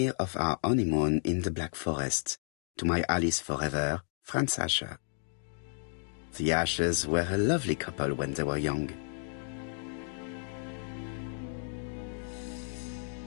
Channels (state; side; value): silent; right; digital silence